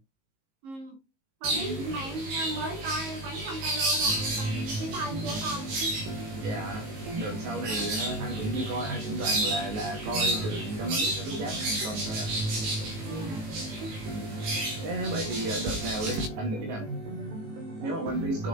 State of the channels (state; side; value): late; left; 19 ms